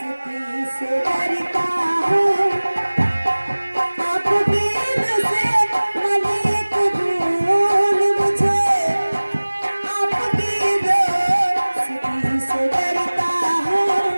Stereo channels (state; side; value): inverted; both; correlation -1.00